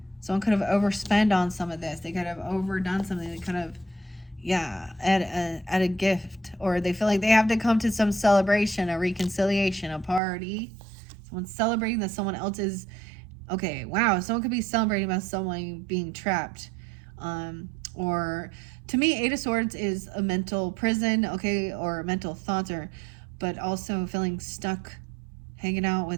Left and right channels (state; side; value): drops out; left; at 10.2 s